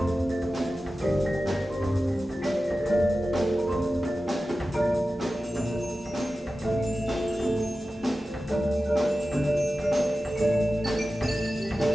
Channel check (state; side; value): normal; both; correlation 0.94